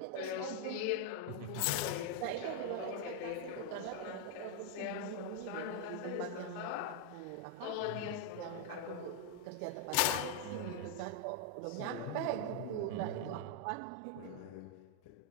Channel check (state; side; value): different; both; correlation 0.00